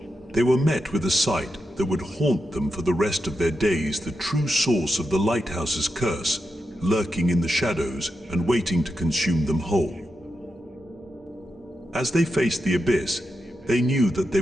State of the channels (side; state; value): both; normal; correlation 0.87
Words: they were met with a sight that would haunt them for the rest of their days, the true source of the Lighthouse's curse, lurking in the shadows and waiting to consume them whole. As they faced the abyss, they knew that they